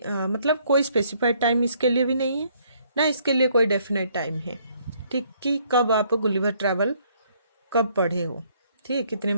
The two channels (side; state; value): both; inverted; correlation -0.66